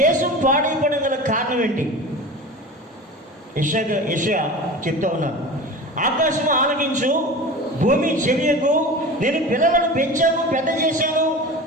దేశం పాడైపోవడం గల కారణం ఏంటి? యెషయా చెప్తా ఉన్నాను, ఆకాశం ఆలకించు, భూమి చెవియకు, నేను పిల్లలను పెంచాను, పెద్ద చేశాను,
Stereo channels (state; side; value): normal; both; correlation 0.33